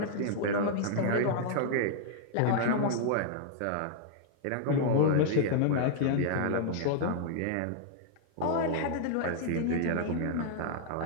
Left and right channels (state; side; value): different; both; correlation -0.01